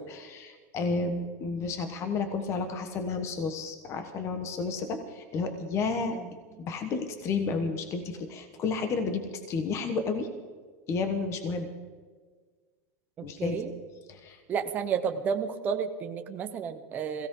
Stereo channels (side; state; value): both; normal; correlation 0.36